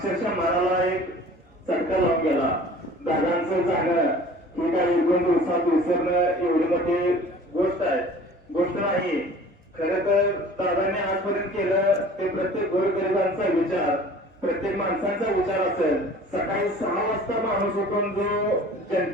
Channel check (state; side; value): normal; both; correlation 0.46